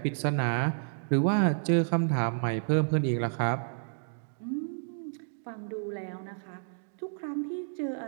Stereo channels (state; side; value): silent; left; digital silence